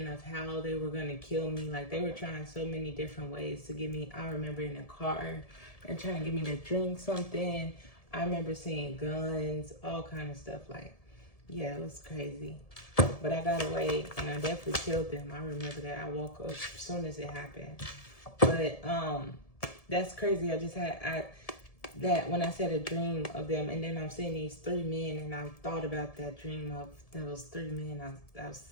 of how they were gonna kill me. Like, they were trying so many different ways to get me. I remember in the car and trying to get me to drink something. I remember seeing guns, all kind of stuff. Like, yeah, it was crazy. But I got away, and I definitely killed them. I remember that. I woke up as soon as it happened. But that's crazy. I just had that when I said a dream of them, and then I'm seeing these 3 men, and I thought about that dream of those 3 men I've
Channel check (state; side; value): late; right; 1.7 ms